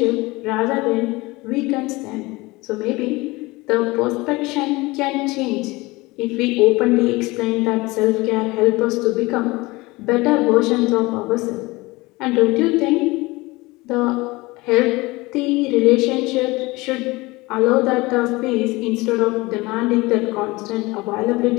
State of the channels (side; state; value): right; quieter; 22.1 dB